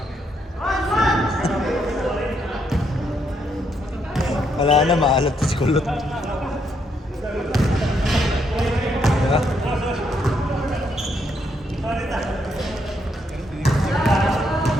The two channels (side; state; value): both; normal; correlation 0.75